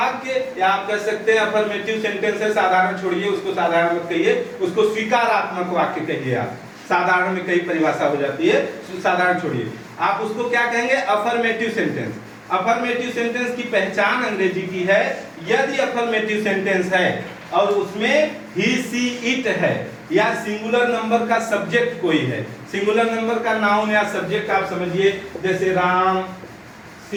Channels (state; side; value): identical; both; correlation 1.00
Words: या आप कह सकते हैं अफर्मेटिव सेंटेंस है, साधारण छोड़िए, उसको साधारण मत कहिए, उसको स्वीकारात्मक वाक्य कहिए। आप साधारण में कई परिभाषा हो जाती है, साधारण छोड़िए, आप उसको क्या कहेंगे? Affirmative sentence. अफर्मेटिव सेंटेंस की पहचान अंग्रेजी की है, यदि अफर्मेटिव सेंटेंस है और उसमें ही, सी, इट है या सिंगुलर नंबर का सब्जेक्ट कोई है, सिंगुलर नंबर का नाउन या सब्जेक्ट आप समझिए, जैसे राम,